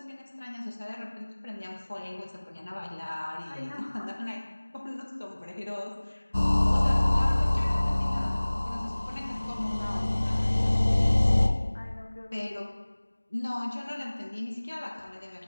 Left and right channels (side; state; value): both; inverted; correlation -1.00